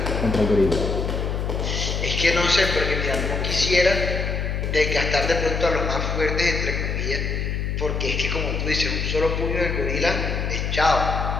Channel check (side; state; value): left; noise; hum, 1 dB below the sound